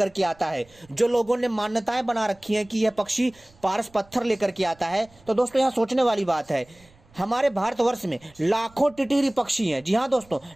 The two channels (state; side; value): noise; right; rumble, 28 dB below the sound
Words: के आता है। जो लोगों ने मान्यताएं बना रखी हैं कि यह पक्षी पारस पत्थर लेकर के आता है, तो दोस्तों यहाँ सोचने वाली बात है। हमारे भारतवर्ष में लाखों टिटहिरी पक्षी हैं। जी हाँ दोस्तों,